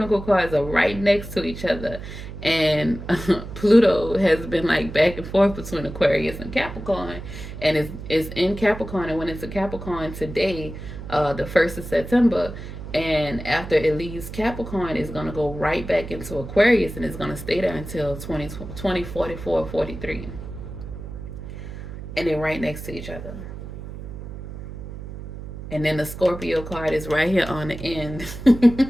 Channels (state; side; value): noise; right; hum, 10 dB below the sound